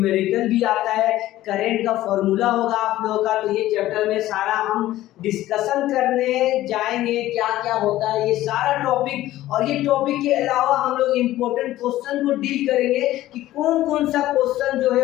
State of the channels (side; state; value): right; quieter; 15.0 dB